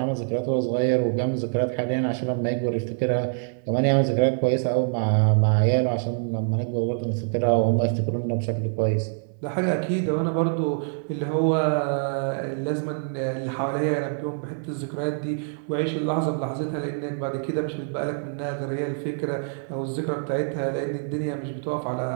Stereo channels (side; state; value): left; silent; 62 dB below the other